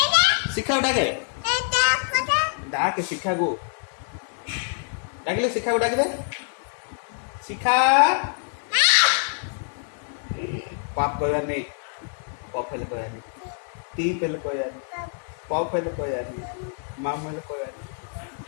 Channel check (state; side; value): silent; right; 56 dB below the other